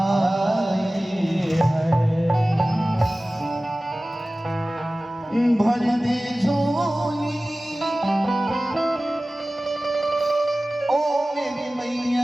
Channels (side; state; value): both; normal; correlation 0.97